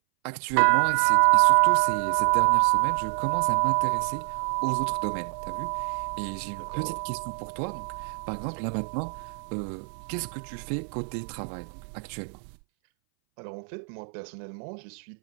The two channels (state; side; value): silent; left; 61 dB below the other